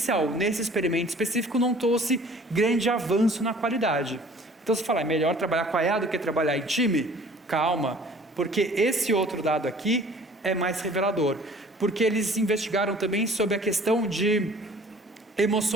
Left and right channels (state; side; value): normal; both; correlation 0.51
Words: Nesse experimento específico não trouxe grande avanço na qualidade. Então você fala, é melhor trabalhar com a IA do que trabalhar em time? Calma, porque esse outro dado aqui é mais revelador. Porque eles investigaram também sobre a questão de